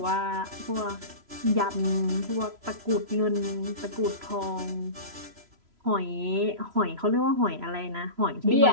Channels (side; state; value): left; late; 3.0 ms